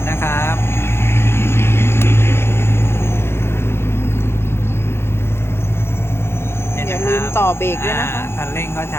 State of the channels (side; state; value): right; late; 0.12 ms